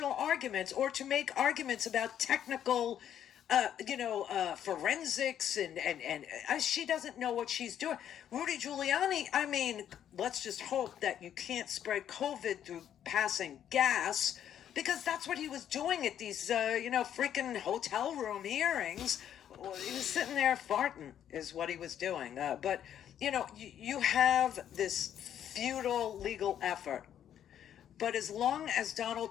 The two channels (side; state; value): right; quieter; 10.0 dB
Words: arguments or to make arguments about technical, forensics and she doesn't know what she's doing. Rudy Giuliani, I mean, let's just hope that you can't spread COVID through passing gas, because that's what he was doing at these, freaking hotel room hearings. He was sitting there farting is what he was doing. But, you have this futile legal effort. But as long as Donald